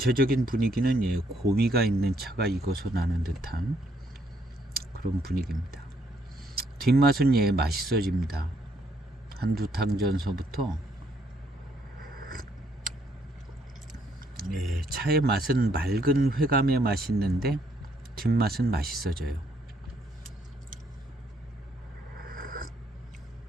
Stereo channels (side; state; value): both; normal; correlation 0.71